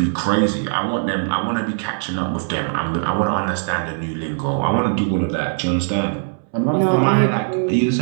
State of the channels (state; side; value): silent; left; 66 dB below the other